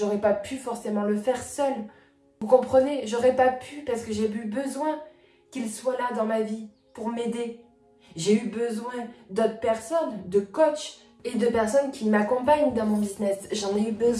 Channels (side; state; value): both; identical; correlation 1.00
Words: pas pu forcément le faire seule. Vous comprenez? J'aurais pas pu parce que j'ai eu besoin qu'il soit là dans ma vie pour m'aider. J'ai eu besoin d'autres personnes, de coachs et de personnes qui m'accompagnent dans mon business. J'en ai eu